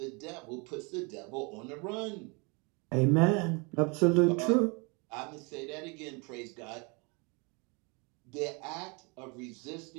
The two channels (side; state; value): left; quieter; 30.7 dB